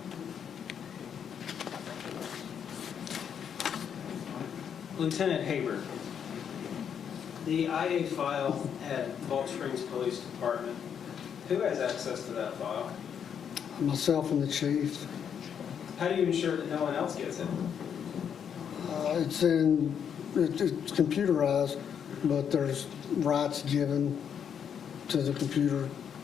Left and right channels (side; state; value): right; quieter; 8.0 dB